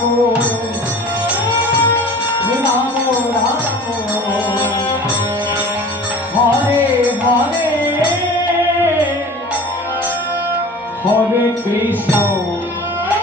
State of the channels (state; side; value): normal; both; correlation 0.41